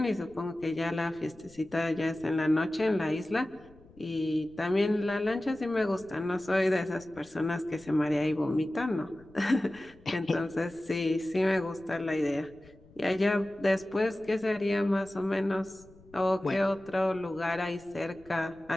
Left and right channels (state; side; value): noise; left; rumble, 25 dB below the sound